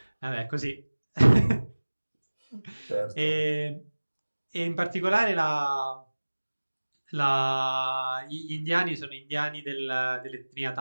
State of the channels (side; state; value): both; inverted; correlation -1.00